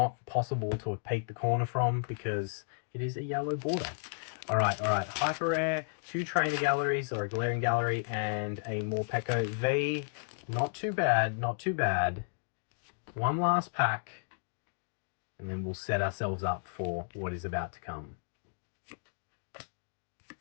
possible to have peeked the corner from because it is a yellow border. All right. Hyper rare, 2 trainer galleries or a glaring gallery, and a Morpeko V. Not too bad, not too bad. One last pack, and then we'll set ourselves up for what is about to come.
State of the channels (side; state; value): right; silent; digital silence